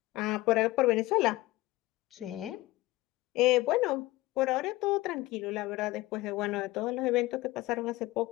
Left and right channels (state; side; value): quieter; right; 19.2 dB